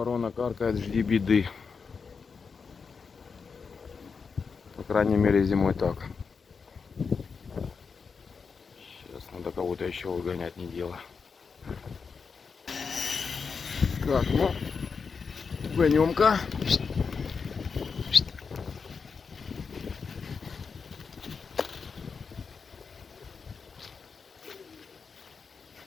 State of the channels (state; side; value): quieter; right; 5.4 dB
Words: каркает, жди беды. По крайней мере зимой так. Сейчас надо кого-то еще выгонять, не дело. Так, ну, гонем-ка.